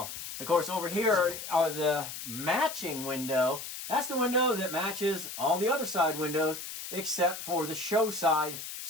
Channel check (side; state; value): left; noise; hiss, 9 dB below the sound